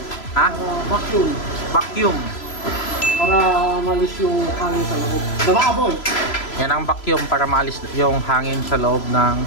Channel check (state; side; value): late; right; 3.0 ms